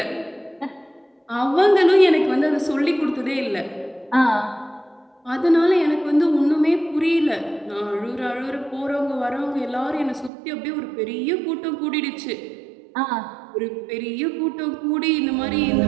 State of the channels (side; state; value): left; drops out; at 10.3 s